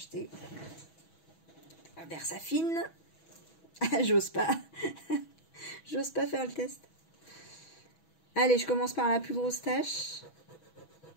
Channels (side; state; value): right; late; 6.1 ms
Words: Versafine. J'ose pas. J'ose pas faire le test. Allez, je commence par la plus grosse tâche.